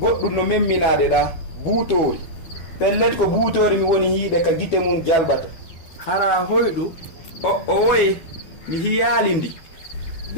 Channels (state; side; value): late; right; 12 ms